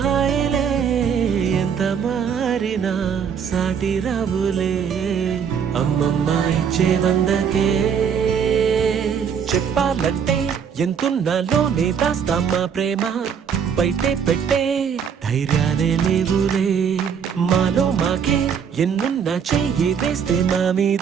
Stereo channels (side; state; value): left; quieter; 7.3 dB